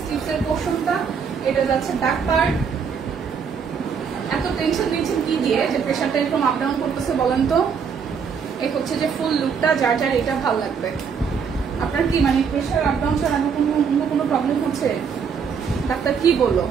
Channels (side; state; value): left; quieter; 6.4 dB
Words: স্লিপসের পোর্শনটা, এটা যাচ্ছে ব্যাক পার্ট। এত টেনশন নিয়েছেন কি দিয়ে যে প্রেশারটা এরকম আপ ডাউন করতেছে বলেন তো? এই হচ্ছে যে ফুল লুকটা, যার যার এটা ভালো লাগবে। আপনার কি মানে প্রেশার আপ ডাউন ছাড়া অন্য কোনো প্রবলেম হচ্ছে? ডাক্তার কি বললো?